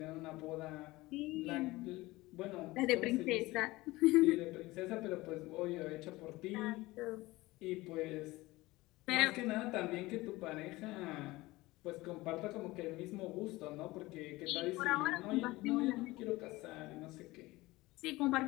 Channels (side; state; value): right; quieter; 19.9 dB